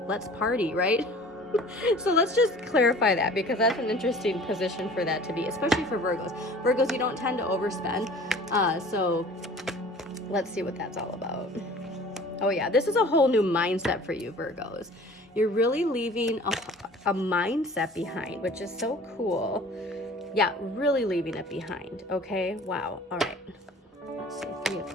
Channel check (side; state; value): both; normal; correlation 0.46